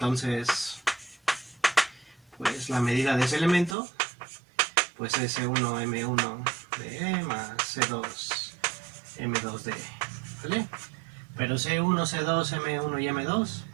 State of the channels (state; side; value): drops out; left; at 3.8 s